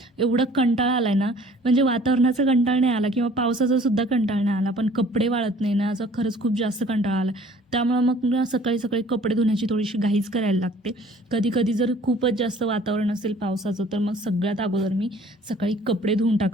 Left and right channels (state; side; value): normal; both; correlation 0.53